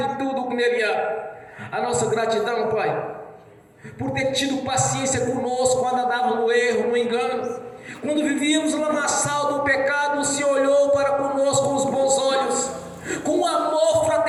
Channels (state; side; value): identical; both; correlation 1.00